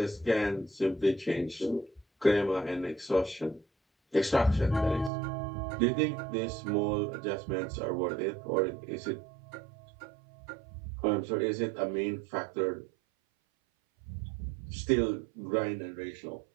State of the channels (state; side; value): drops out; left; at 5.1 s